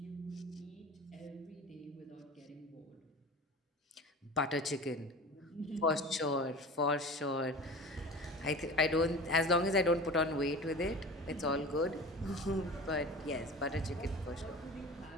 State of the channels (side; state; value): both; normal; correlation 0.36